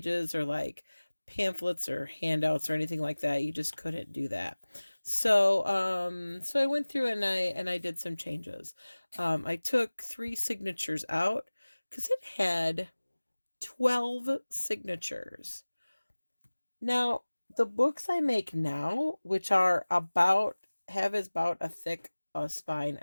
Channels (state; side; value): inverted; both; correlation -1.00